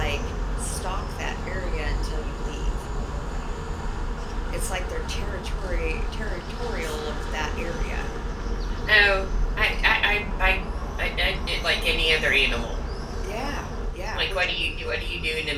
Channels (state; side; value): identical; both; correlation 1.00